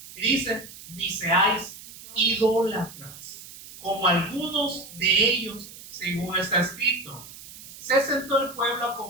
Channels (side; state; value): right; noise; hiss, 16 dB below the sound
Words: Y dice, ni seáis idólatras, como algunos de ellos, según está escrito. Se sentó el pueblo a